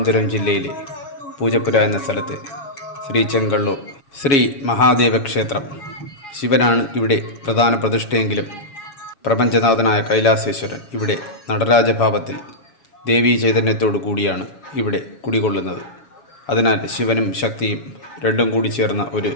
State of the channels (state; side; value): late; right; 7.2 ms